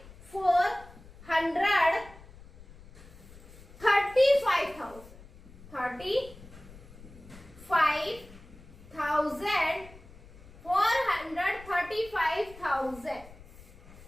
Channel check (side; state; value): left; noise; rumble, 20 dB below the sound